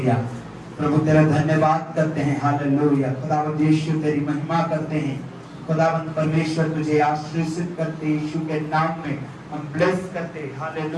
प्रभु तेरा धन्यवाद करते हैं। हालेलुया, खुदावंद यीशु तेरी महिमा करते हैं। खुदावंद परमेश्वर तुझे आशीर्षित करते यीशु के नाम में हम ब्लेस करते हैं।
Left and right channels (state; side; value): identical; both; correlation 1.00